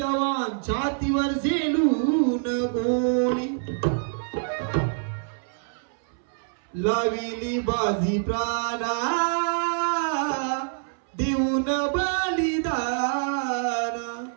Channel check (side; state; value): left; silent; 61 dB below the other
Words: छातीवर झेलून गोळी लाविली बाजी प्राणा देऊन बलिदान